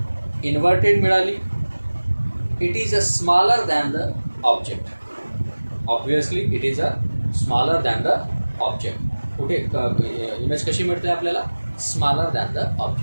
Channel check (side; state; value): both; inverted; correlation -1.00